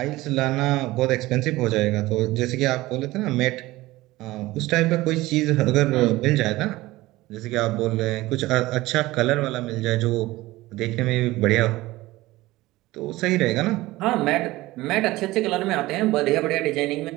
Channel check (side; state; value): left; quieter; 18.6 dB